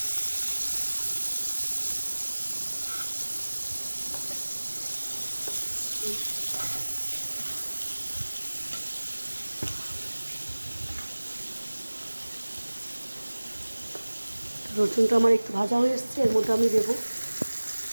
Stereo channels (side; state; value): both; inverted; correlation -1.00